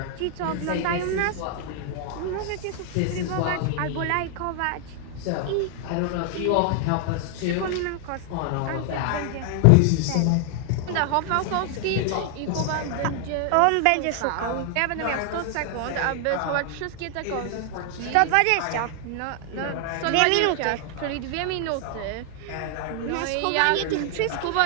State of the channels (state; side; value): different; both; correlation 0.00